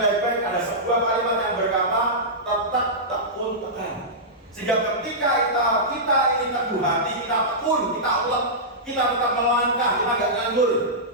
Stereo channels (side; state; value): both; normal; correlation -0.14